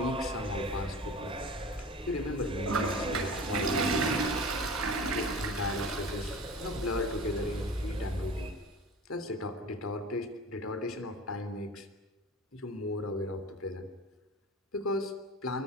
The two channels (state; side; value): normal; both; correlation 0.37